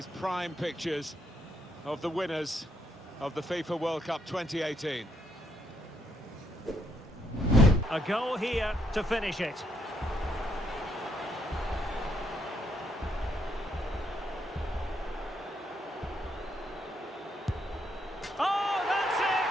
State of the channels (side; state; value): both; normal; correlation 0.74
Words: prime pictures of the winners of the FIFA World Cup 2018. A goal here to finish it. Oh, that's